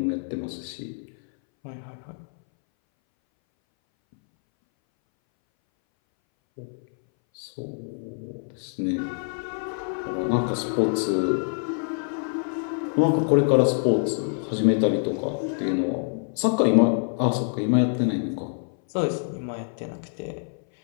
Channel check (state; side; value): silent; right; 60 dB below the other